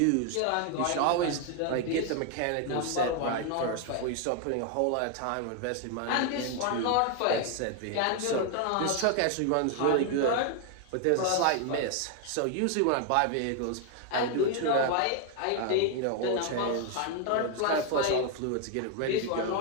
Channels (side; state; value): both; different; correlation 0.00